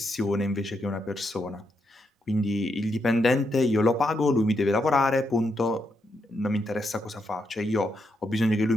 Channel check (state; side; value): normal; both; correlation 0.81